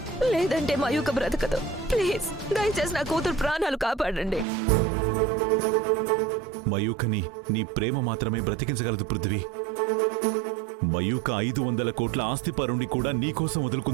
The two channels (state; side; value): drops out; left; at 4.5 s